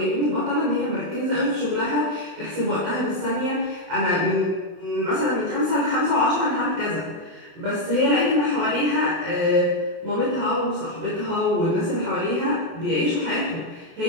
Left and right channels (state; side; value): late; left; 24 ms